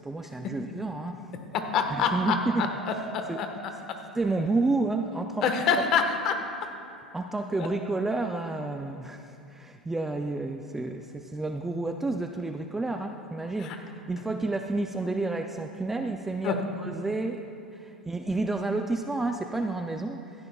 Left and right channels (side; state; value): both; normal; correlation 0.62